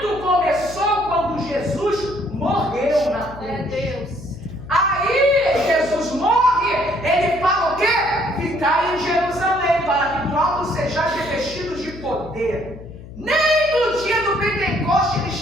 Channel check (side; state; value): left; noise; hum, 15 dB below the sound